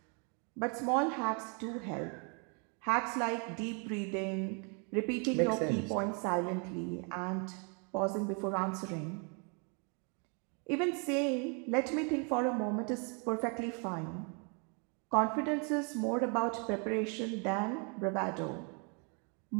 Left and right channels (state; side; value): quieter; left; 36.5 dB